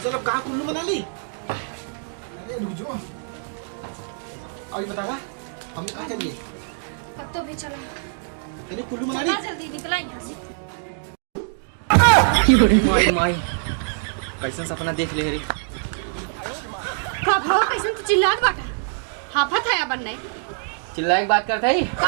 चलो कहाँ कुल्लू मना ली अरे रुक जाओ अभी बतावा हम कहाँ चलिए कब तो भी चला तेरे कुल्लू मना चला ली जल्दी निकला यहाँ से। माई माई कैसन सपना देख ले रे का भाव कैसे तू चिल्लात बाटा हाफत है अपन नहीं चिल्लाए के बात करता ही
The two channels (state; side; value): silent; left; digital silence